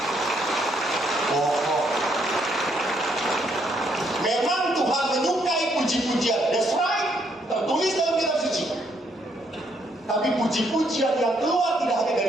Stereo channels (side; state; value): both; normal; correlation 0.72